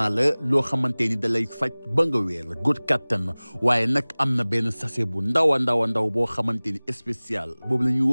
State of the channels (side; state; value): both; inverted; correlation -1.00